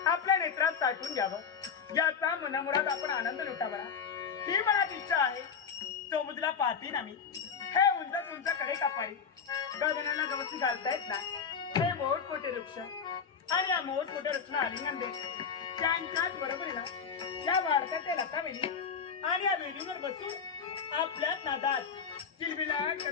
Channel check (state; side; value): quieter; right; 6.4 dB